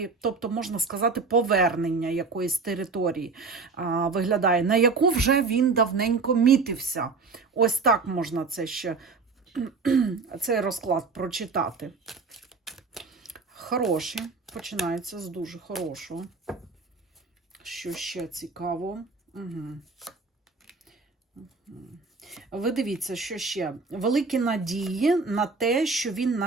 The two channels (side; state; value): left; quieter; 4.4 dB